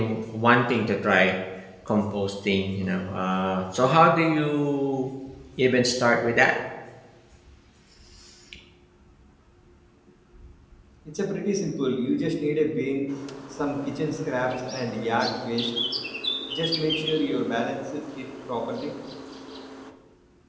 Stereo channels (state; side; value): identical; both; correlation 1.00